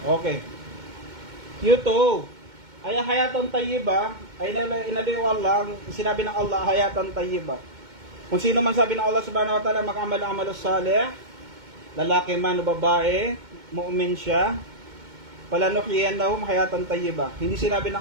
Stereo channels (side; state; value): left; late; 2.2 ms